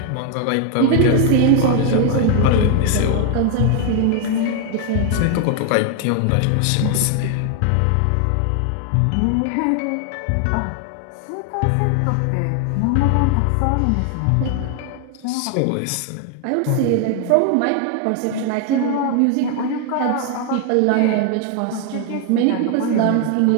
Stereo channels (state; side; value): different; both; correlation 0.00